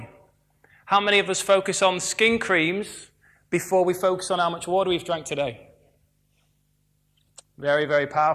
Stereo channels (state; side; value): identical; both; correlation 1.00